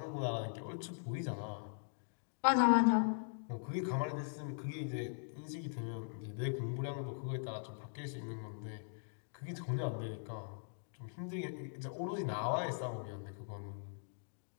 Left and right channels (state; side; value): silent; right; digital silence